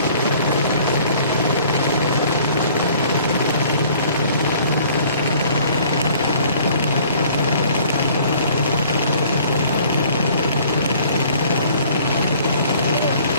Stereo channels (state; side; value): inverted; both; correlation -0.54